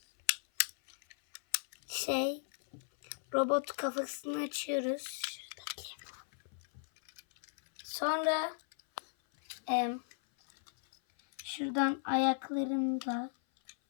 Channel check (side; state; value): right; silent; 54 dB below the other